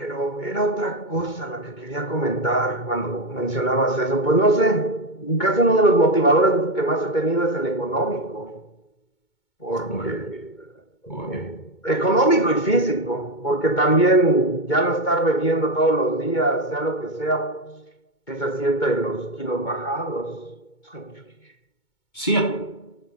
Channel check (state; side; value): late; right; 2.2 ms